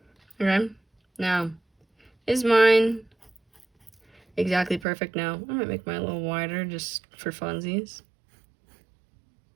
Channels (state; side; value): drops out; left; at 4.9 s